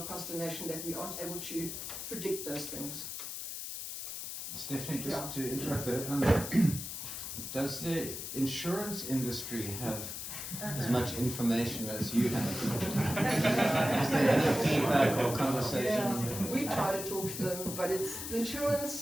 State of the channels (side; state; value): left; noise; hiss, 7 dB below the sound